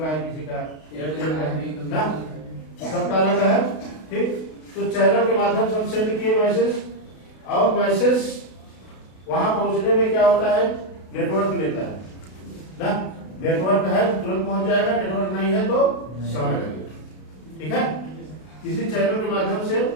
है, किसी का एयरटेल का है ना, सबका अलग है। ठीक, तो चैनल के माध्यम से हम सेंड किए मैसेज, और मैसेज वहां पहुंचने में क्या होता है, नेटवर्क लेता है ना। नेटवर्क है तो तुरंत पहुंच जाएगा, नेटवर्क नहीं है तो समय लगेगा। ठीक है, किसी चैनल के माध्यम से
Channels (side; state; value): right; late; 32 ms